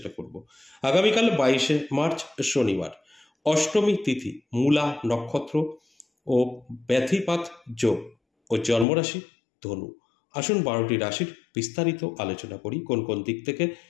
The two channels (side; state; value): right; drops out; at 8.8 s